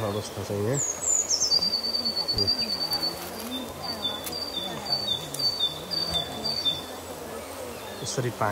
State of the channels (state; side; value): identical; both; correlation 1.00